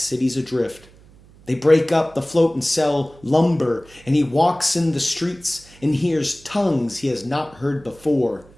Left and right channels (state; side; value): noise; right; hum, 25 dB below the sound